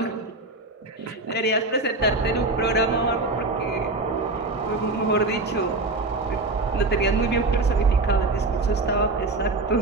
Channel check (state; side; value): quieter; left; 3.2 dB